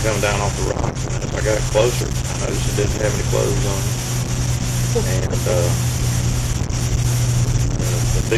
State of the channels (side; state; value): both; identical; correlation 1.00